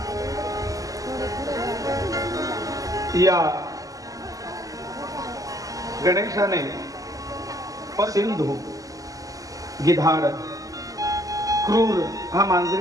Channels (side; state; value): left; late; 0.17 ms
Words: या गणेशाने सिंधू, गिधाड, क्रूर हा